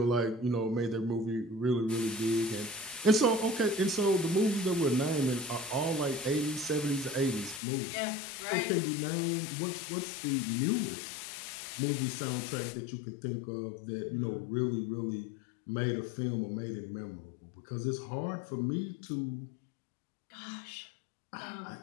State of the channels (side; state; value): right; drops out; at 7.6 s